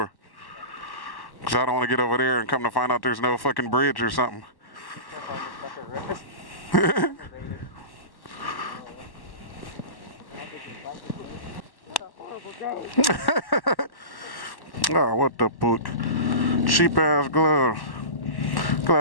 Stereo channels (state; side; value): late; right; 1.1 ms